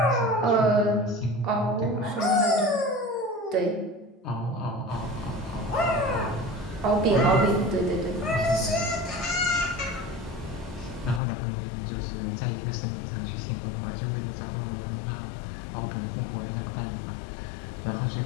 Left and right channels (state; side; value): drops out; right; at 11.2 s